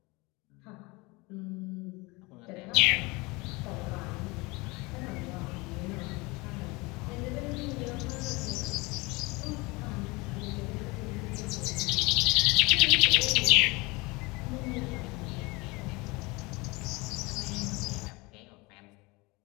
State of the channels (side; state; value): right; quieter; 24.9 dB